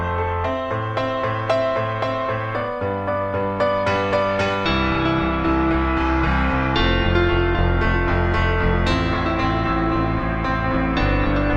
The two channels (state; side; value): identical; both; correlation 1.00